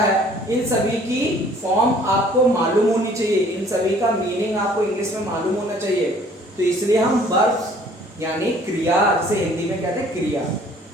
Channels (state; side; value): normal; both; correlation 0.56